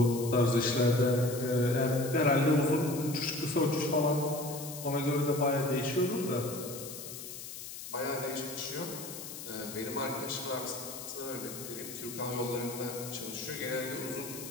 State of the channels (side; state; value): left; noise; hiss, 10 dB below the sound